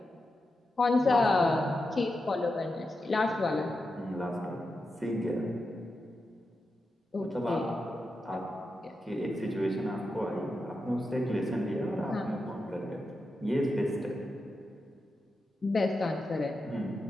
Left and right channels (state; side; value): normal; both; correlation 0.88